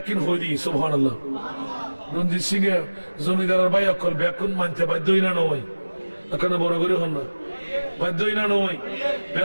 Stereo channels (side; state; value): both; inverted; correlation -1.00